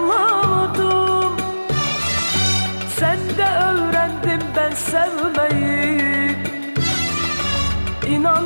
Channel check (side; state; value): both; inverted; correlation -1.00